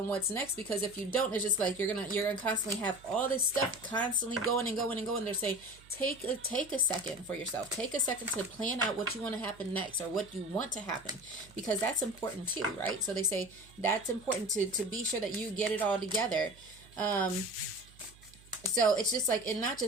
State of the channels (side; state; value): right; noise; hum, 24 dB below the sound